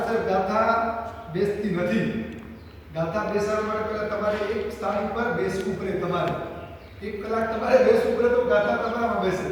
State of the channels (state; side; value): identical; both; correlation 1.00